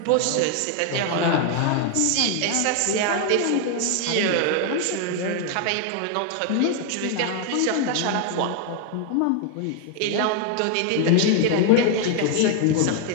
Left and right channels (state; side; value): different; both; correlation 0.00